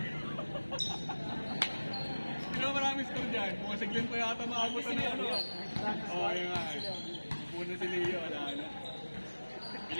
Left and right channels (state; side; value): inverted; both; correlation -1.00